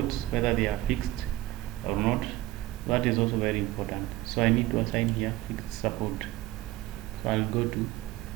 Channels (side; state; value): left; quieter; 16.8 dB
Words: whether they are fixed or not. That is also very important. So I need to assign here fixed support. So I'll go to